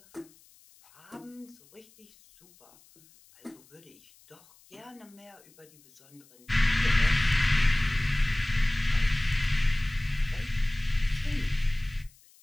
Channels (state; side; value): noise; left; hiss, 28 dB below the sound